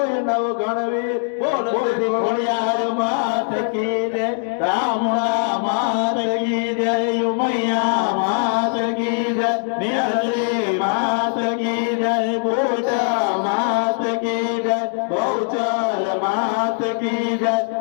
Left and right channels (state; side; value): silent; right; digital silence